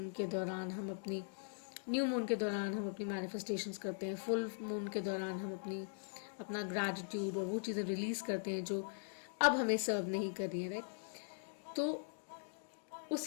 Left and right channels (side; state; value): right; silent; digital silence